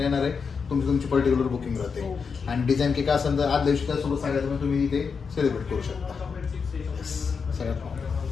येणार आहे, तुमची पर्टिक्युलर बुकिंग राहते. आणि डिझाईन केक असेल तर आज दिवशी त्यासोबत सांगायचं तुम्ही इथे सेलिब्रेट करू शकता. सगळ्यात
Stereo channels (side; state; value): right; quieter; 5.6 dB